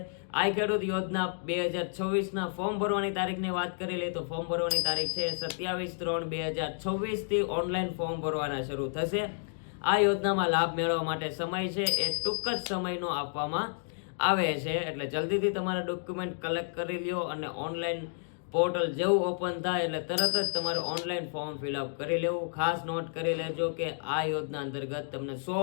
આ ખેડૂત યોજના 2024 ના ફોર્મ ભરવાની તારીખની વાત કરી લઈએ તો ફોર્મ ભરવાની તારીખ છે 27/3/2024 થી ઓનલાઈન ફોર્મ ભરવાના શરૂ થશે. આ યોજનામાં લાભ મેળવવા માટે સમય છે એ ટૂંક જ સમયનો આપવામાં આવે છે, એટલે જલ્દીથી તમારા ડોક્યુમેન્ટ કલેક્ટ કરી લ્યો અને ઓનલાઈન પોર્ટલ જેવું ઓપન થાય એટલે તરત જ તમારે ઓનલાઈન ફોર્મ ફિલઅપ કરી લેવું. ખાસ નોટ કરી લેજો કે આ યોજના અંતર્ગત તમને 100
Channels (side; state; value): right; silent; digital silence